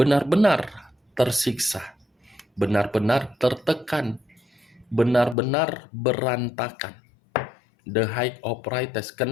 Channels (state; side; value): drops out; right; at 5.4 s